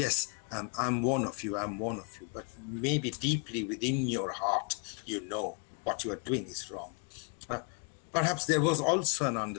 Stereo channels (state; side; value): quieter; right; 37.5 dB